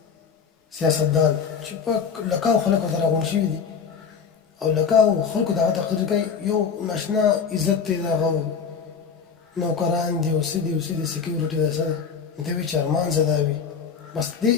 سیاستدان چې په لکاو خلکو ته راغونډ شوي دي او لکاو خلکو د هغه تقریر کوي یو ناشنا عزت دی د هغه نوکران دي او څه دي او څه دي سکیورټي ده څه ده دی وایي چې ارمان زه دا وي بس دې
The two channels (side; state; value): right; quieter; 6.3 dB